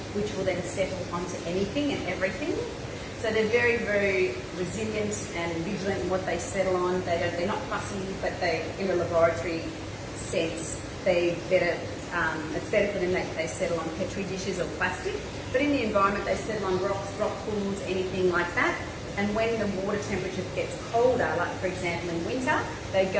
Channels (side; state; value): both; identical; correlation 1.00